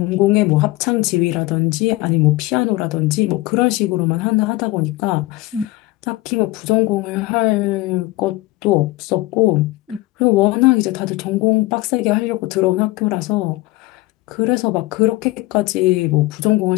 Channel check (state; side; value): quieter; right; 19.4 dB